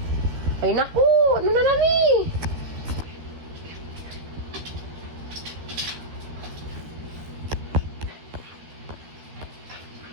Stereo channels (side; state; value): left; late; 13 ms